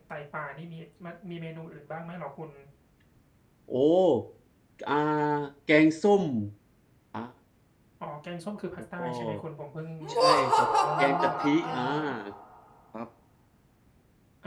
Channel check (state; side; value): identical; both; correlation 1.00